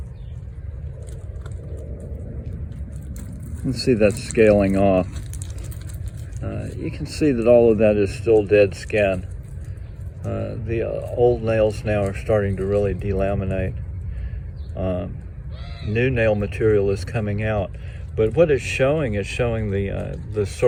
You can see that's scaling off. You can see that all of that is still dead skin. The old nails now are starting to really delaminate. New nail material is coming out, but what it's showing is showing the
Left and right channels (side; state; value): both; identical; correlation 1.00